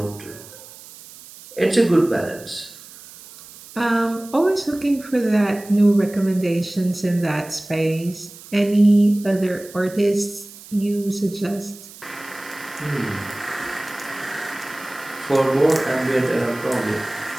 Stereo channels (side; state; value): right; noise; hiss, 18 dB below the sound